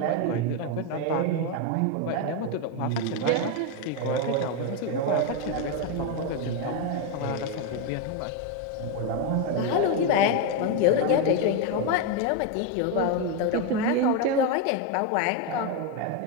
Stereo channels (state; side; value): different; both; correlation 0.02